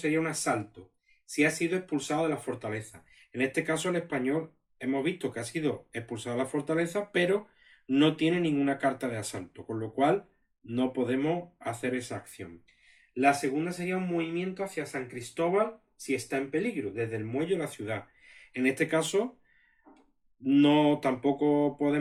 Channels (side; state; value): both; identical; correlation 1.00